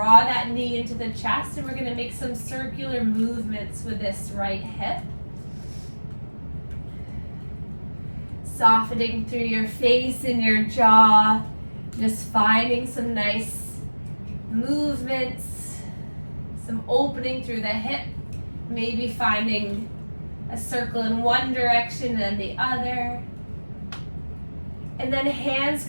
that knee into the chest, and we're gonna make some circular movements with this right hip. Softening through your face and your jaw, just finding some nice movements, some opening through the hip, maybe finding a circle in one direction and the other. And then hands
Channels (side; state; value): both; inverted; correlation -1.00